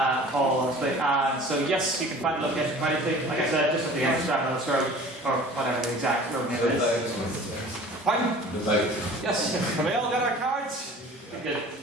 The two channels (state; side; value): normal; both; correlation 0.44